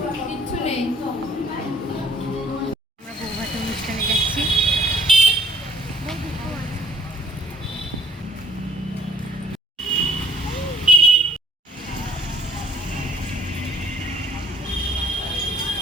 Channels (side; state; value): both; normal; correlation 0.59